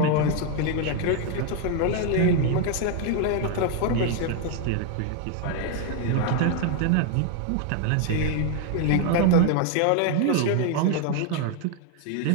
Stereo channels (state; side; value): different; both; correlation 0.00